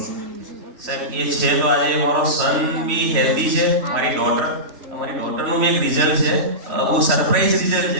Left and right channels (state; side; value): late; left; 3.0 ms